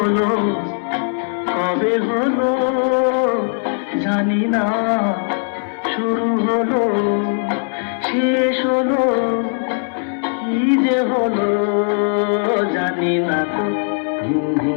কবে হলো জানি না, শুরু হলো শেষ হলো, কি যে হলো জানি না তো।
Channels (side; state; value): right; silent; 67 dB below the other